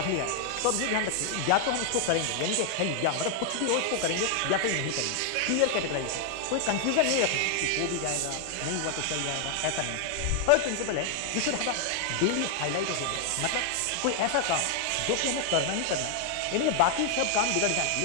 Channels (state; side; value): different; both; correlation 0.00